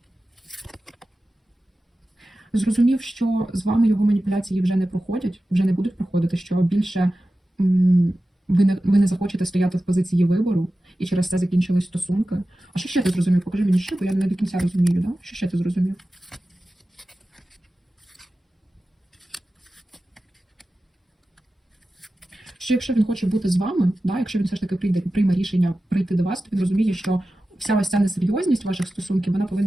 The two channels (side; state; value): both; normal; correlation 0.94